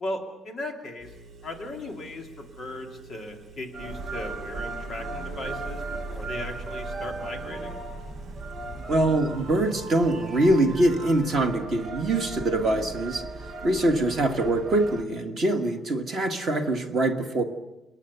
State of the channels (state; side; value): normal; both; correlation 0.69